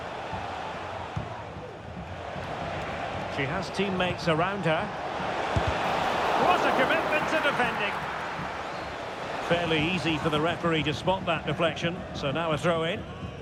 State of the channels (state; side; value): identical; both; correlation 1.00